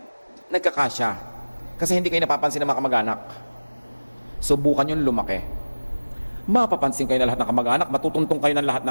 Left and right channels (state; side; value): inverted; both; correlation -1.00